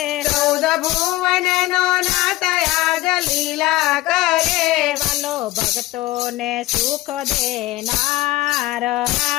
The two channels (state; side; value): quieter; right; 17.8 dB